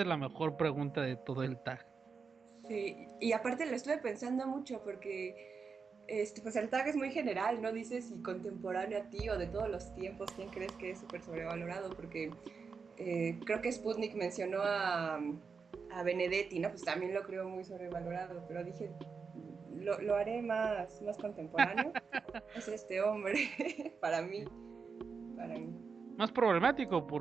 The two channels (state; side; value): quieter; left; 5.3 dB